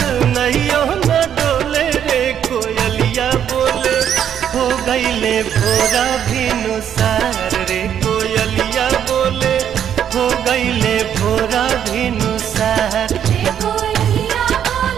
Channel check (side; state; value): left; quieter; 9.3 dB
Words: नैयो न डोले रे कोयलिया बोले हो गईले भोरा भिनुसार रे कोयलिया बोले हो गईले भोरा भिनुसार।